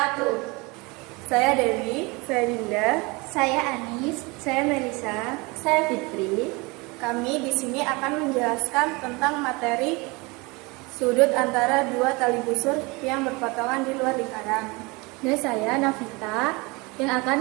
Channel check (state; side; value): quieter; left; 26.1 dB